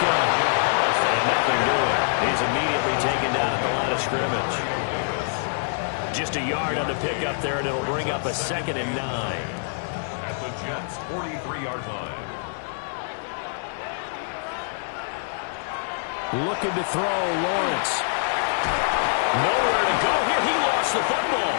And nothing doing. He's immediately taken down at the line of scrimmage. Just a yard on the pickup there, and it'll bring up a 2nd and 9. At the Jets' 43-yard line. Looking to throw, Lawrence. Nowhere to go here. He lost the football.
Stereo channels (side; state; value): right; silent; 62 dB below the other